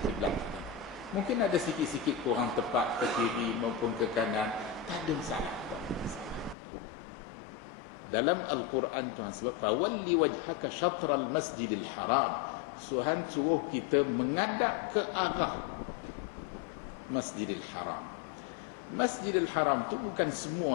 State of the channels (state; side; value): drops out; right; at 6.6 s